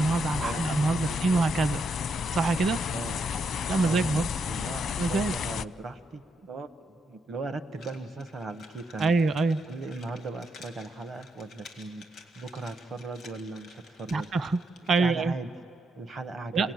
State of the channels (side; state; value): both; normal; correlation 0.80